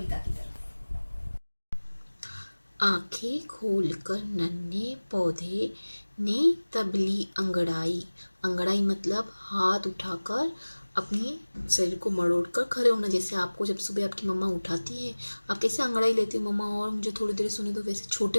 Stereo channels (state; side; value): inverted; both; correlation -1.00